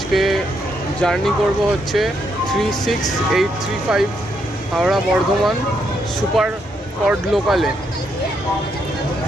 জার্নি করব হচ্ছে 36835 হাওড়া বর্ধমান সুপার কর্ড লোকালে।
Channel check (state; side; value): normal; both; correlation 0.77